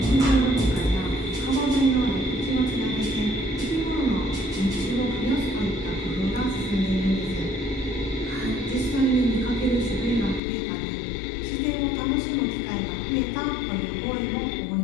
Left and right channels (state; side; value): drops out; right; at 10.4 s